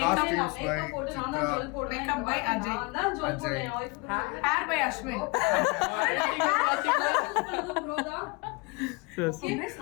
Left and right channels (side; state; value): right; quieter; 28.1 dB